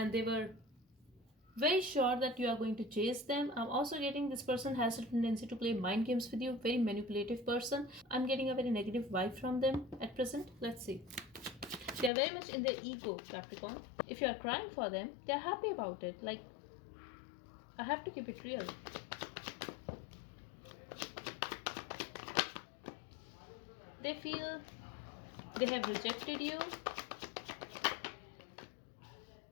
they were very sure that you are going to chase them. I'm also getting this person has a tendency to play mind games with you. Very manipulative person. I'm getting a very negative vibe from them at present. Let's see. They are very much in their ego, Capricorn. If you are crying for them, they are happy about it. Like, I have to keep it real. They feel they have rejected you.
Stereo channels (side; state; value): right; drops out; at 12.1 s